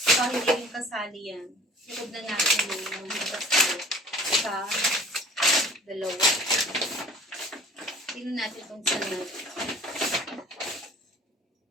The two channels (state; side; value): normal; both; correlation 0.48